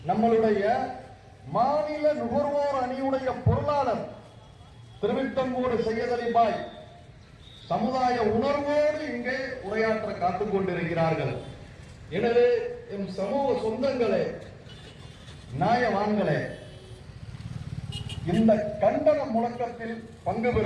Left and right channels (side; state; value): both; identical; correlation 1.00